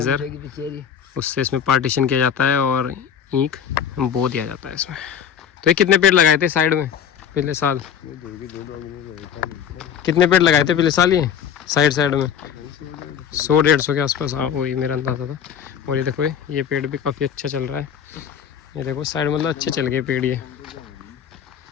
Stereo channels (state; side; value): quieter; right; 8.4 dB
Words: उससे इसमें पार्टीशन किया जाता है और ईंख बो दिया जाता है इसमें। तो ये कितने पेड़ लगाए थे साइड में पिछले साल? कितने पेड़ लगाए थे पिछले साल ये साइड में? 100-150 के आसपास, हाँ वही मेरा अंदाज़ा था। और ये देखो ये पेड़ भी काफ़ी अच्छा चल रहा है। ये देखो साइड मतलब अच्छे चल गए पेड़ ये।